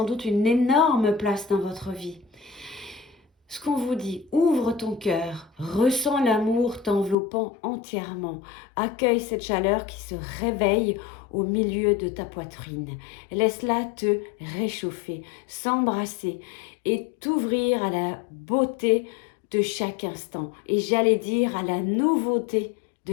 doute une énorme place dans votre vie. Ce qu'on vous dit, ouvre ton cœur, ressens l'amour t'enveloppant entièrement, accueille cette chaleur qui se réveille au milieu de ta poitrine. Laisse-la te réchauffer, s'embrasser et t'ouvrir à la beauté de chaque instant. Et j'allais dire à la nouveauté de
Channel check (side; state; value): right; drops out; at 7.2 s